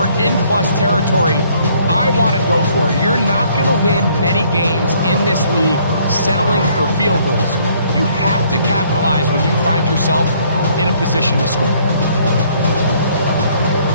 in plus territory, I want to go for it. You're not going to win many games in this league settling for field goals. You have to capitalize when you find yourself in a position to score.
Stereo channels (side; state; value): both; inverted; correlation -0.63